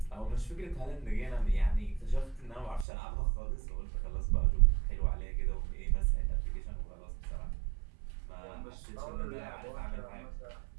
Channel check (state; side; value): drops out; left; at 2.9 s